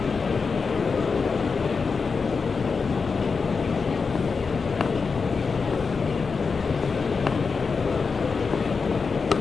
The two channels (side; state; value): right; quieter; 5.0 dB